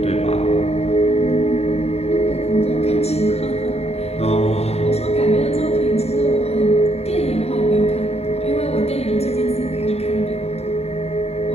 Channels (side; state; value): right; late; 0.30 ms